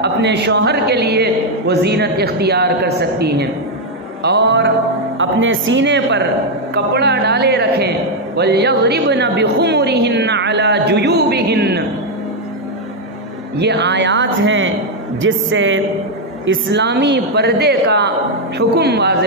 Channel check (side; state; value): both; normal; correlation 0.02